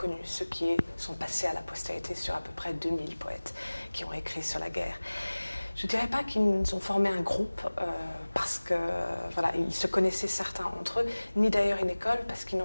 ceux qui sont passés à la postérité sur à peu près 2000 poètes qui ont écrit sur la guerre. Je ne dirais pas qu'ils ont formé un groupe parce que voilà, ils se connaissaient certains entre eux, ni d'ailleurs une école parce qu'ils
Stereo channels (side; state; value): both; inverted; correlation -1.00